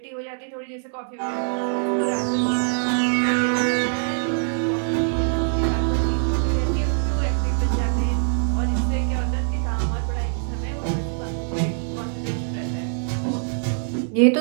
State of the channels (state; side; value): silent; left; digital silence